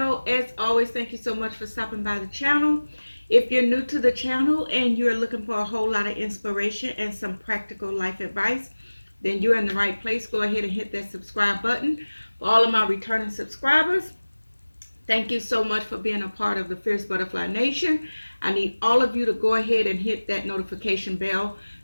As always, thank you so much for stopping by the channel. If you're new to the channel and you're looking for a whole lot of inspiration and some practical life advice, then you're in the right place. Go ahead and hit that subscribe button. For all of my returning subscribers, thank you so much for being a part of the Fierce Butterfly Nation. I need all of you to go ahead and hit that notification bell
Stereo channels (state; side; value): inverted; both; correlation -1.00